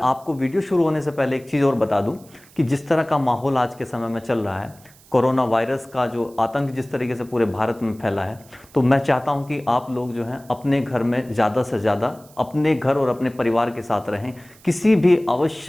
वीडियो शुरू होने से पहले एक चीज़ और बता दूं कि जिस तरह का माहौल आज के समय में चल रहा है, कोरोना वायरस का जो आतंक जिस तरीके से पूरे भारत में फैला है, तो मैं चाहता हूं कि आप लोग जो हैं अपने घर में ज़्यादा से ज़्यादा अपने घर और अपने परिवार के साथ रहें। किसी भी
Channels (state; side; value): noise; right; hiss, 26 dB below the sound